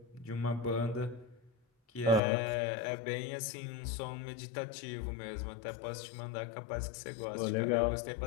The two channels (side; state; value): right; drops out; at 2.2 s